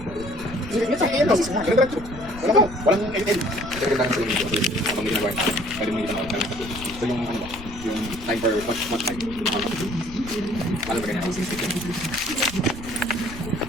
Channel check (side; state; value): left; noise; rumble, 14 dB below the sound